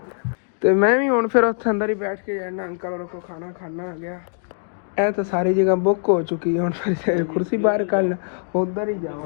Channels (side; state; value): right; silent; digital silence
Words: ਤੇ ਮੈਂ ਵੀ ਹੁਣ ਫਿਰ ਉੱਥੇ ਅੰਦਰ ਹੀ ਬੈਠ ਕੇ ਜਾਣਾ, ਅੰਕਲ ਹੋਰਾਂ ਕੋਲ ਖਾਣਾ ਖਾਣਾ ਆ ਗਿਆ। ਇਹ ਤਾਂ ਸਾਰੀ ਜਗ੍ਹਾ ਬੁੱਕ ਹੋ ਚੁੱਕੀ ਹੁਣ, ਫਿਰ ਕੁਰਸੀ ਬਾਹਰ ਕੱਲ ਉਧਰ ਹੀ